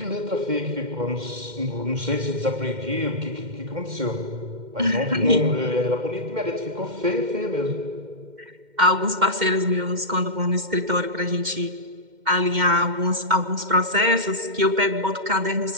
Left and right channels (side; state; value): left; late; 2.1 ms